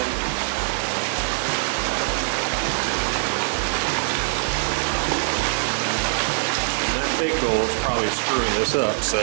And that big goal is probably screwing this up, so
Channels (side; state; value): left; silent; digital silence